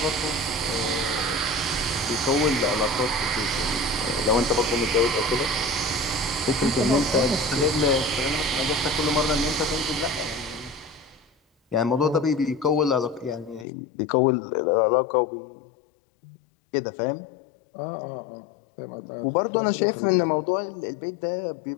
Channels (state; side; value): drops out; right; at 13.7 s